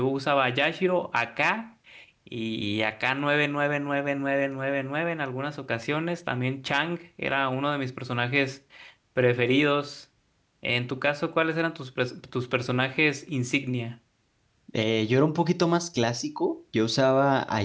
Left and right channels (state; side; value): identical; both; correlation 1.00